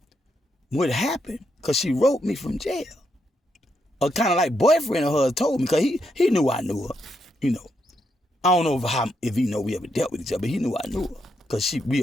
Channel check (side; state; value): both; normal; correlation 0.80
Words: what happened, because she wrote me from jail. A kind of like boyfriend of hers told me, because he knew I knew her, I don't know if he know we ever dealt with each other, but he knew I knew her, because we